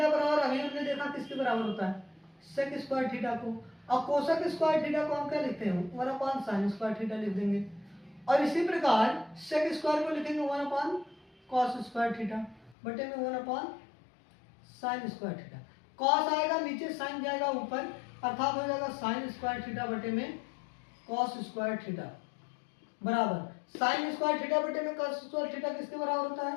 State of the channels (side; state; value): right; drops out; at 12.8 s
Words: बराबर, अभी हमने देखा किसके बराबर होता है, सेक स्क्वायर थीटा को। और कोसेक स्क्वायर थीटा को हम क्या लिखते हैं, 1 अपॉन साइन स्क्वायर थीटा लिख देंगे। और इसी प्रकार सेक स्क्वायर को लिखेंगे 1 अपॉन कॉस स्क्वायर थीटा बटे में 1 upon sine square theta. Cos आएगा नीचे, साइन जाएगा ऊपर, अर्थात हो जाएगा साइन स्क्वायर थीटा बटे में कॉस स्क्वायर थीटा बराबर साइन स्क्वायर थीटा बटे में कॉस स्क्वायर थीटा किसके बराबर होता है,